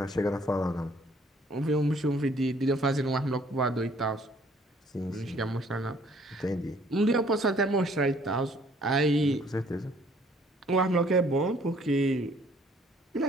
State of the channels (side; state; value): both; normal; correlation 0.60